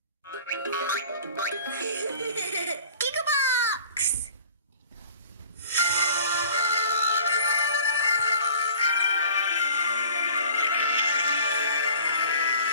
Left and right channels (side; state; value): both; inverted; correlation -0.48